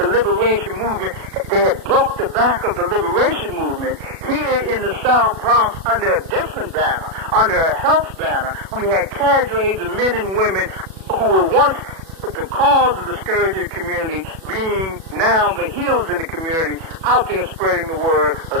liberation movement, they had broke the back of the liberation movement, here in the South Bronx, under a different banner, under a health banner, we had cadres of men and women who were once the cause of the scourge of the community, being now the healers in the community, out there spreading the word of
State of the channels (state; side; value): late; left; 37 ms